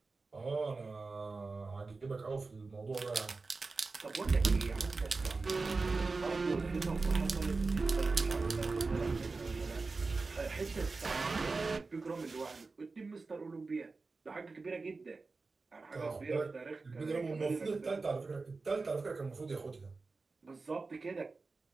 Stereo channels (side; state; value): left; quieter; 3.9 dB